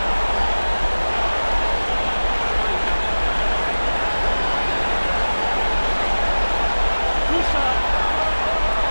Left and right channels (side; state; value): both; inverted; correlation -1.00